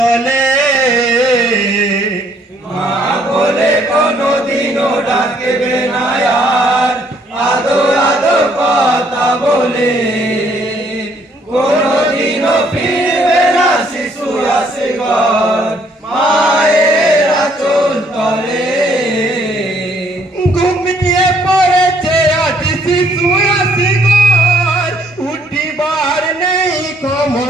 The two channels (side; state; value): both; normal; correlation 0.66